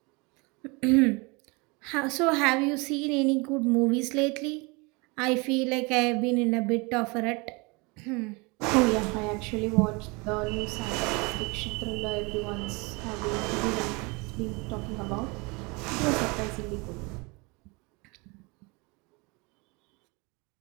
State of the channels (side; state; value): left; quieter; 27.9 dB